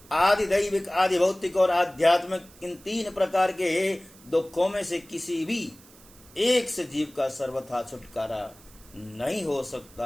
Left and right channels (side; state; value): right; noise; hiss, 24 dB below the sound